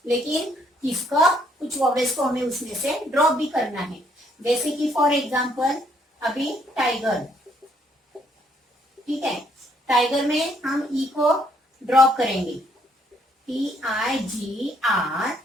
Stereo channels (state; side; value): normal; both; correlation 0.68